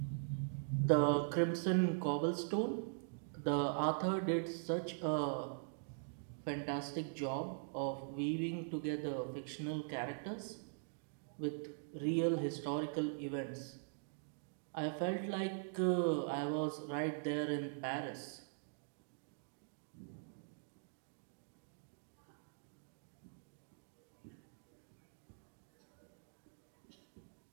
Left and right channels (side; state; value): left; silent; digital silence